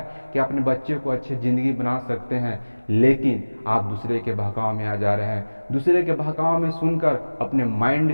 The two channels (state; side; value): inverted; both; correlation -1.00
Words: कि अपने बच्चे को अच्छी ज़िंदगी बना सकते हैं। लेकिन आप दूसरे के बहकाव में आ जा रहे हैं, दूसरे के बहकाव में सुनकर अपने